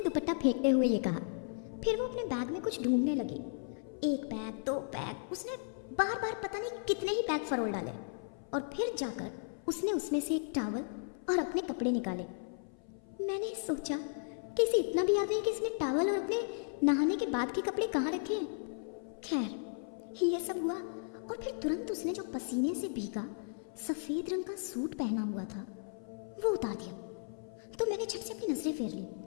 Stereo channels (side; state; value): right; silent; 54 dB below the other